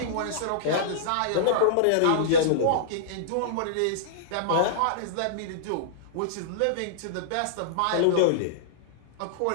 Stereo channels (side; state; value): both; different; correlation -0.02